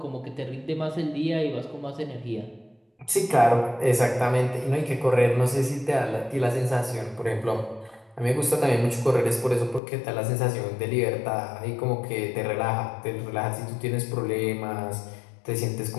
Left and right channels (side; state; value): right; drops out; at 9.8 s